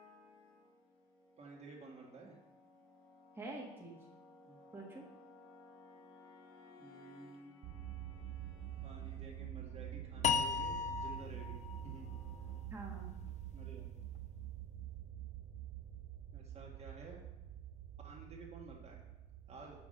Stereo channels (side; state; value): both; normal; correlation 0.29